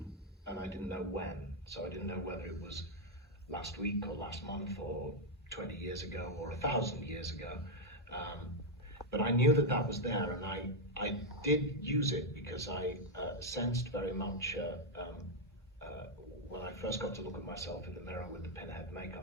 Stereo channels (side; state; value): both; normal; correlation 0.00